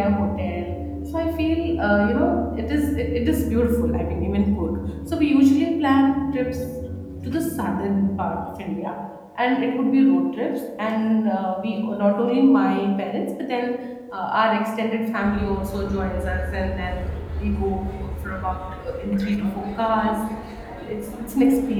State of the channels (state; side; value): identical; both; correlation 1.00